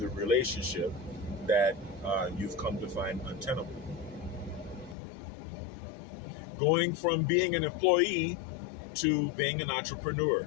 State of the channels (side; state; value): right; drops out; at 5.0 s